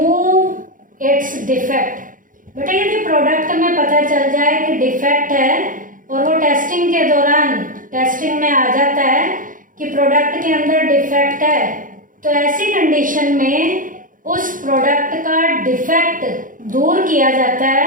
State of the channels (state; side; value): late; left; 0.39 ms